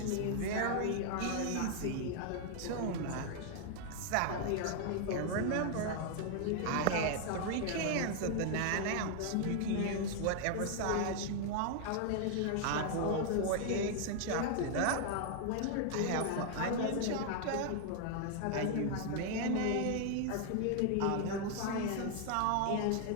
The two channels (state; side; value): different; both; correlation 0.00